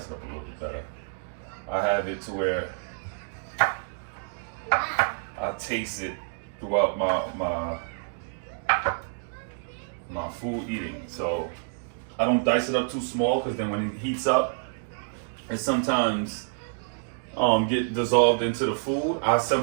it up a little bit better. I have it to where I taste it throughout my food eating. So I don't dice it up too small, because then when it heats up, it sometimes get dissolved into the food. I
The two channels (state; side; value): silent; left; digital silence